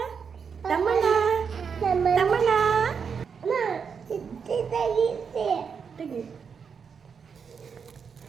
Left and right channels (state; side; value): quieter; left; 6.3 dB